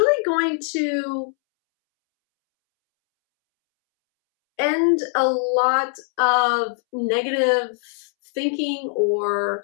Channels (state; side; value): silent; right; 65 dB below the other